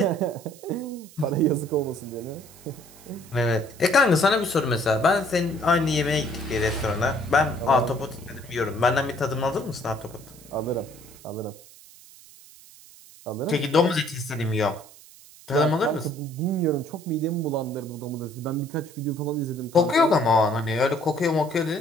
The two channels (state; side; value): noise; right; hiss, 22 dB below the sound